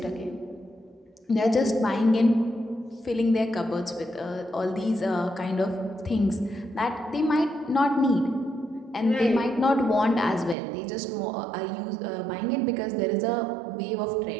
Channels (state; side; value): drops out; left; at 10.6 s